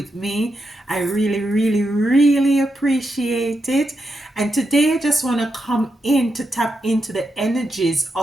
me. I really, really, really appreciate it. And today I just want to come in to tap into the energies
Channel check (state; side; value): normal; both; correlation 0.85